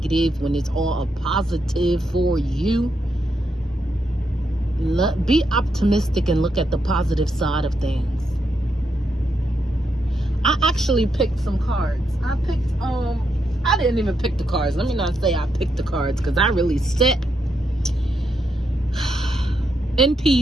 when it's all a positive for you. Be optimistic and look at the positive side of things. I actually picked some cards. I didn't even pick the cards. Let me not say I picked the cards, because I really sat in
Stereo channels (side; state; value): both; normal; correlation 0.81